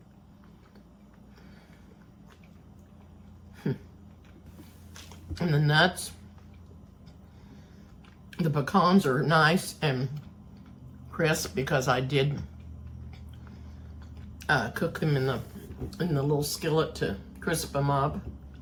And the nuts, the pecans are nice and crisp because I did cook them in the little skillet to crisp them up.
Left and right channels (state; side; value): identical; both; correlation 1.00